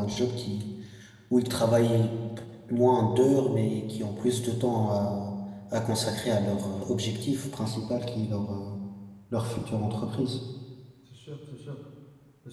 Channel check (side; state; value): both; identical; correlation 1.00